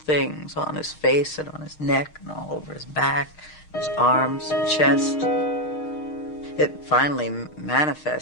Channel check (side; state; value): right; late; 6.5 ms